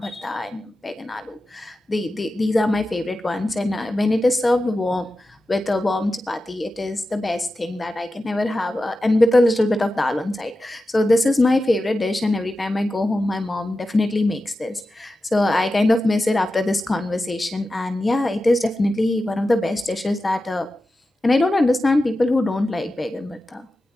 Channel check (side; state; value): both; normal; correlation 0.92